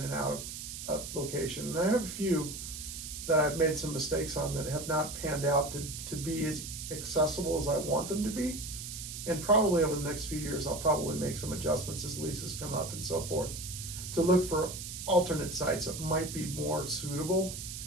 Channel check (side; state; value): right; noise; hiss, 8 dB below the sound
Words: and out of a location. And I have a few that I've made some mistakes on that have not panned out to be as accessible as I want them to be. And probably over the next few years, I'll probably make some adjustments as leases come up and so forth, to look for alternate sites that might be more suitable